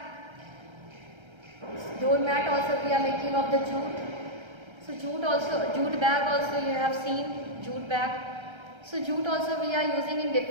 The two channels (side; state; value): left; late; 1.3 ms